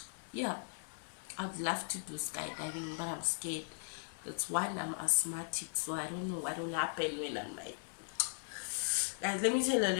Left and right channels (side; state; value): right; silent; digital silence